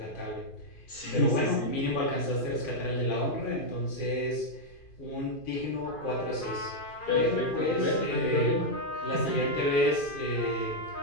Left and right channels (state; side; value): late; right; 2.5 ms